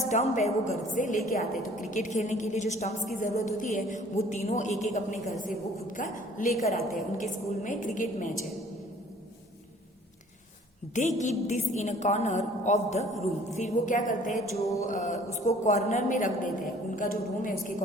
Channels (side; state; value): both; normal; correlation 0.53